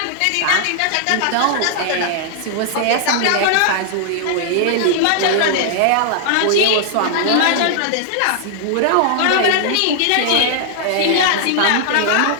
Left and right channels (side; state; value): both; different; correlation -0.01